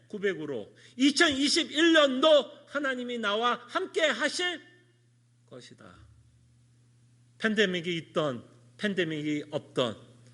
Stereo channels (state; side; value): identical; both; correlation 1.00